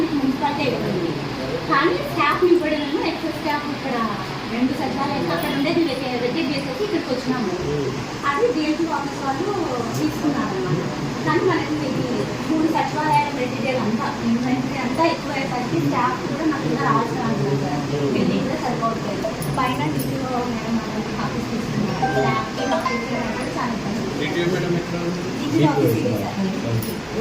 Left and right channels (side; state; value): both; identical; correlation 1.00